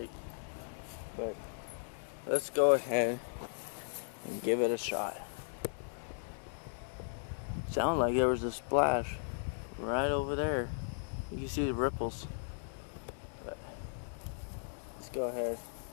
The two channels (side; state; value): right; silent; digital silence